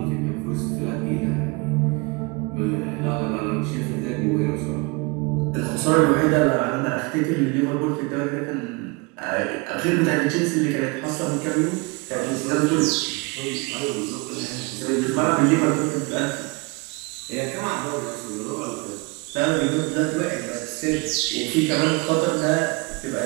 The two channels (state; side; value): quieter; left; 28.3 dB